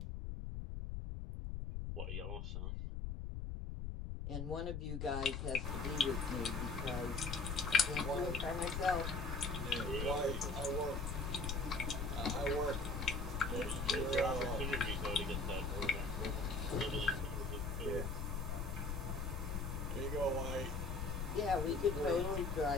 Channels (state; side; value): noise; left; rumble, 3 dB below the sound